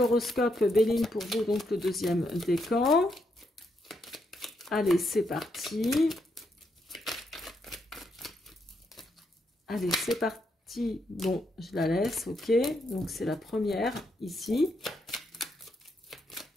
Béline pour vous, donc le deuxième décan. Allez, c'est parti. Allez, c'est parti. Bon, je la laisse, ok. Donc, c'est la première ici.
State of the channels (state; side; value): normal; both; correlation 0.79